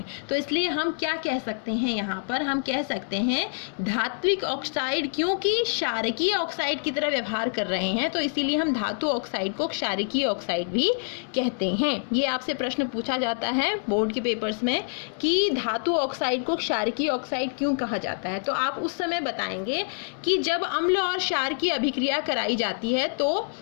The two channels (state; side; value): silent; right; 61 dB below the other